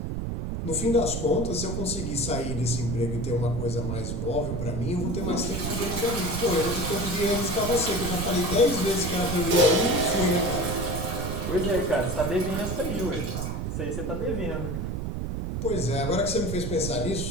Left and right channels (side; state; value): right; noise; rumble, 3 dB below the sound